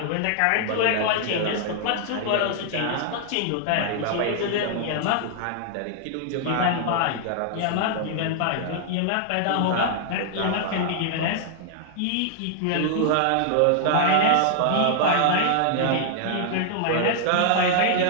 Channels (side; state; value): both; different; correlation 0.00